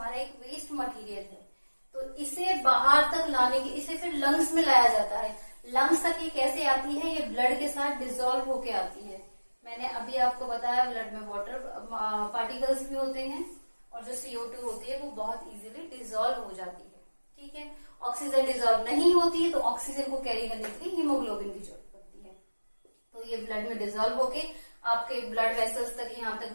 एक वेस्ट मटेरियल है। तो इसे बाहर तक लाने की, इसे फिर लंग्स में लाया जाता है। लंग्स तक ये कैसे आती है, ये ब्लड के साथ डिसॉल्व होके आती है। मैंने अभी आपको बताया ब्लड में वाटर पार्टिकल्स भी होते हैं, और जो CO2 होती है वो बहुत इजीली डिसॉल्व हो जाती है, ठीक है। ऑक्सीजन डिसॉल्व नहीं होती है, तो ऑक्सीजन को कैरी करने के लिए हीमोग्लोबिन की जरूरत पड़ती है। तो ये ब्लड में डिसॉल्व होके आपके ब्लड वेसल्स तक, यहाँ तक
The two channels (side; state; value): both; inverted; correlation -1.00